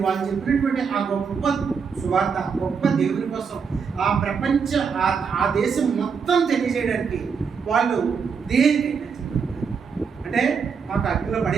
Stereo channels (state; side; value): quieter; left; 6.0 dB